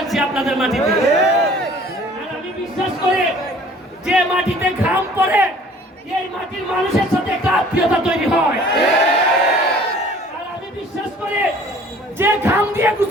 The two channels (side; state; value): both; normal; correlation 0.51